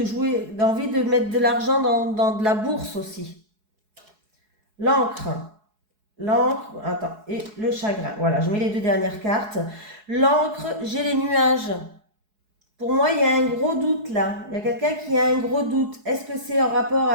jouer, a envie de mettre de l'argent dans de la bourse aussi. L'encre. L'encre, attends, et le chagrin. Voilà, je mets les deux dernières cartes. L'encre, j'ai les nuages. Pour moi, il y a un gros doute là. Il y a quelqu'un qui a un gros doute. Est-ce que c'est en rapport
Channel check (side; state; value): left; late; 4.7 ms